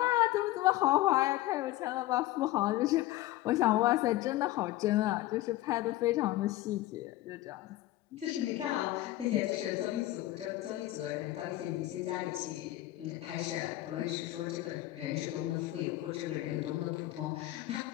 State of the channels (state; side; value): quieter; right; 16.1 dB